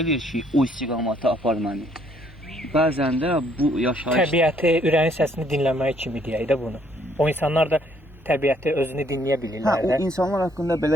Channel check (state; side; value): normal; both; correlation 0.66